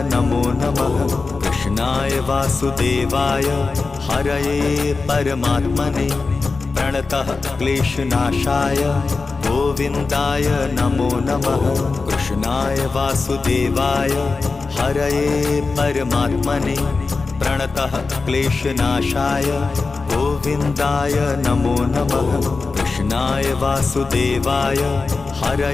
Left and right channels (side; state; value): right; quieter; 4.1 dB